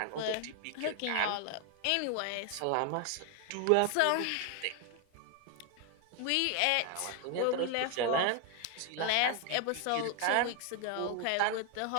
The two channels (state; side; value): different; both; correlation 0.01